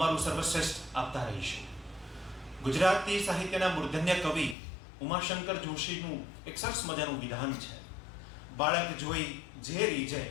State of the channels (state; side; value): drops out; right; at 4.5 s